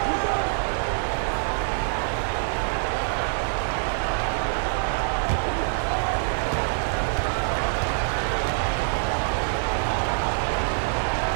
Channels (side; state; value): left; silent; digital silence